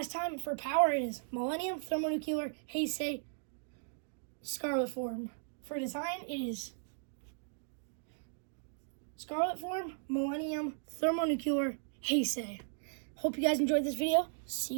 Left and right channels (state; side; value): silent; left; digital silence